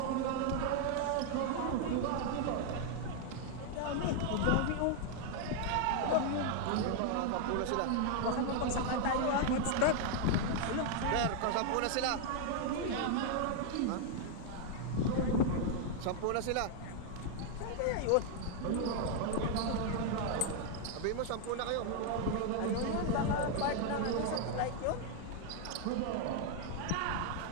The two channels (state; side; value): different; both; correlation 0.00